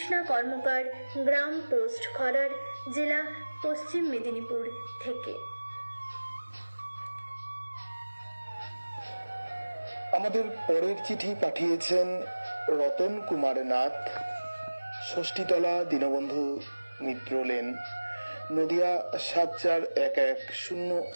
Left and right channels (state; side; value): inverted; both; correlation -1.00